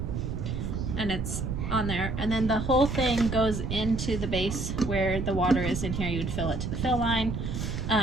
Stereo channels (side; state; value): right; noise; rumble, 3 dB below the sound